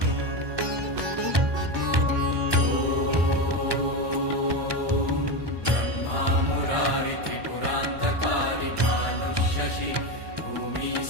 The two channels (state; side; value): late; left; 1.2 ms